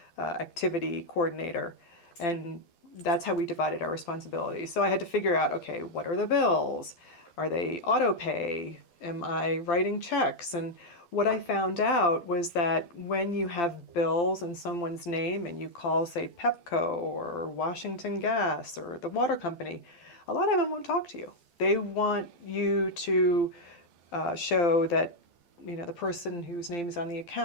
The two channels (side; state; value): right; late; 12 ms